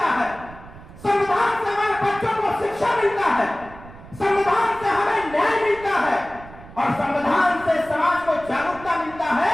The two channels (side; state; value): right; noise; rumble, 18 dB below the sound